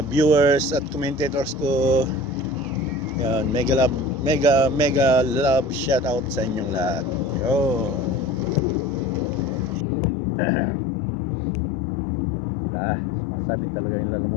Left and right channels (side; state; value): right; drops out; at 9.9 s